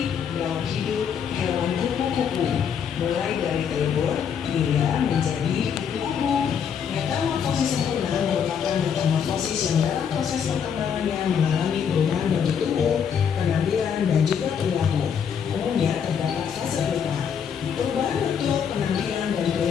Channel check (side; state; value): right; quieter; 7.5 dB